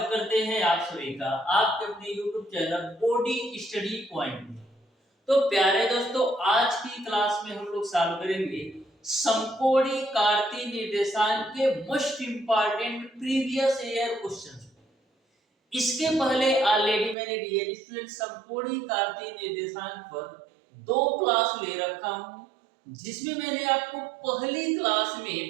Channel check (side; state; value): left; drops out; at 17.2 s